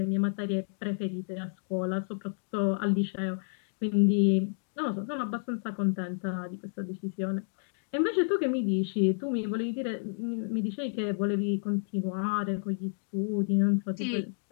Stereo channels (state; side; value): silent; right; digital silence